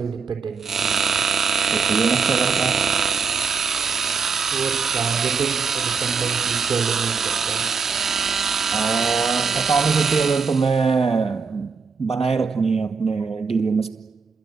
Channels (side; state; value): left; quieter; 5.3 dB